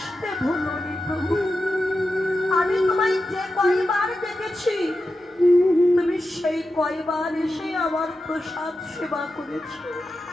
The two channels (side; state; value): both; normal; correlation 0.90